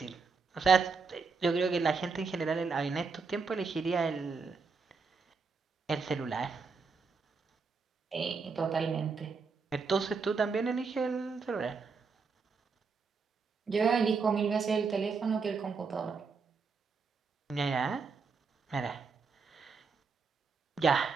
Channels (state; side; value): quieter; left; 4.9 dB